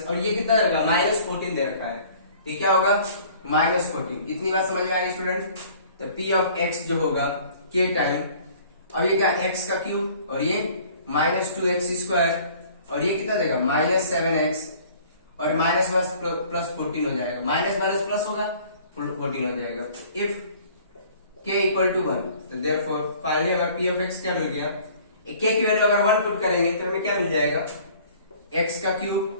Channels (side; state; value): both; inverted; correlation -0.52